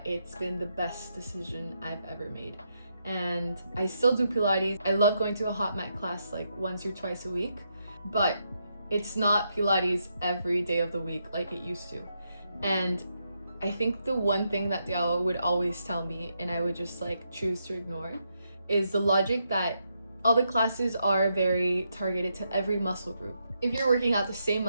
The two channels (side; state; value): both; inverted; correlation -0.81